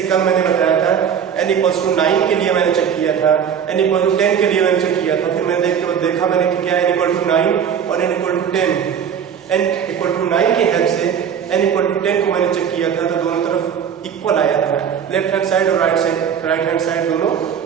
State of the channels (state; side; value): quieter; left; 8.0 dB